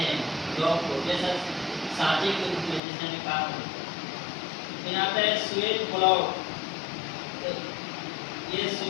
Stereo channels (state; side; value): drops out; right; at 2.8 s